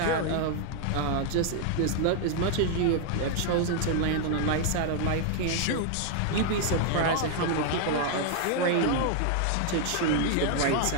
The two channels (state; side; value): different; both; correlation 0.00